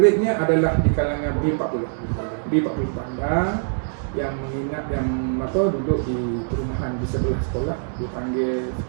adalah di kalangan B40 bandar yang menginap yang duduk di perumahan di sebelah sekolah, dipanggil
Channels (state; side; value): silent; left; digital silence